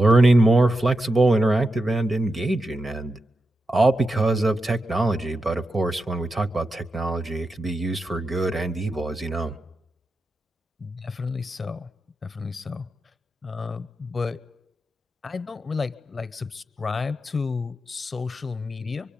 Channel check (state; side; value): normal; both; correlation 0.88